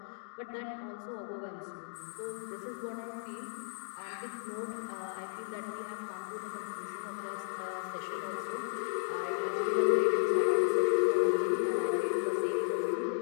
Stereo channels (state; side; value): silent; right; digital silence